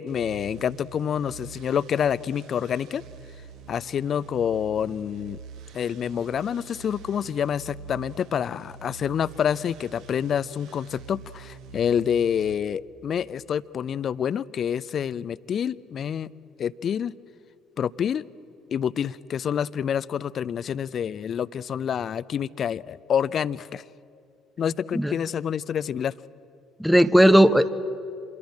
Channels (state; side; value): quieter; right; 4.0 dB